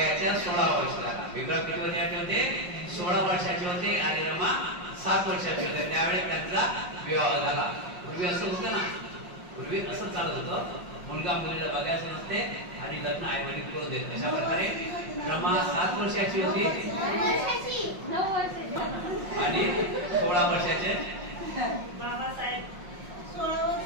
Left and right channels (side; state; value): left; late; 5.6 ms